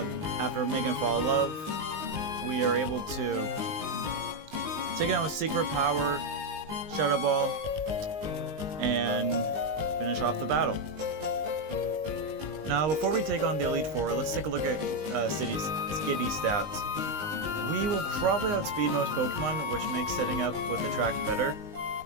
making it fall in love, we are able to take it out with Secret Power, Shadow Ball, and finish off the battle. Now, before we take on the Elite Four, let's take a look at Skitty stats. We will probably outspeed most Pokemon, which makes setting up with the track better.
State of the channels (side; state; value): left; late; 19 ms